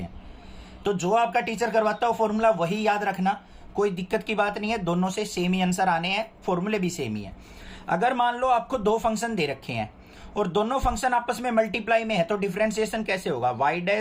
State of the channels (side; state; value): both; identical; correlation 1.00